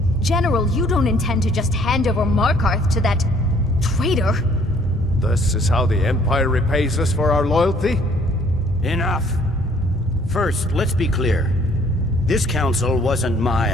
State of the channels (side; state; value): both; normal; correlation 0.60